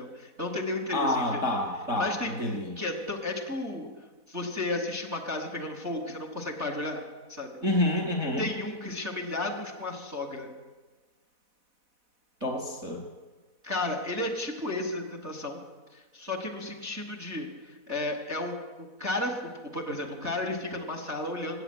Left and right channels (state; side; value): late; left; 4.1 ms